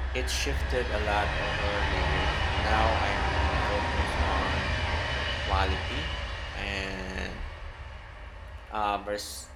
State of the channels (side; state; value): both; identical; correlation 1.00